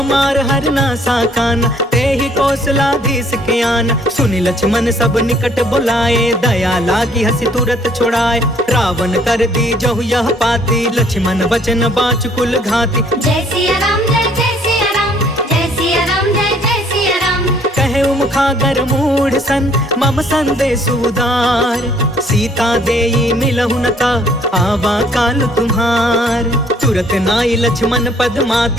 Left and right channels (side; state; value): both; normal; correlation 0.61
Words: हरना साकाना, ते ही कौशलाधीश के आना। सुनि लक्ष्मण सब निकट बुलाए, दया लागी हसी तुरत छोड़ाए। रावण कर दी जहु यह पाती, लक्ष्मण वचन बाच कुल घाती। जय सिया राम जय जय सिया राम, जय सिया राम जय जय सिया राम। कहे मुखागर मूढ़ सन, मम संदेश उदार। सीता देई मिलहु न ता, आवा काल तुम्हार। तुरत नाई लक्ष्मण पद